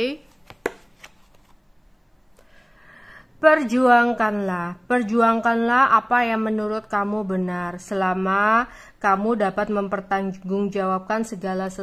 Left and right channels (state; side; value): identical; both; correlation 1.00